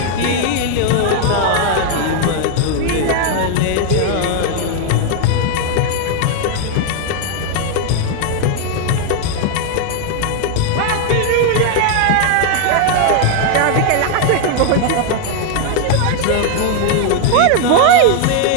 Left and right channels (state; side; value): different; both; correlation 0.00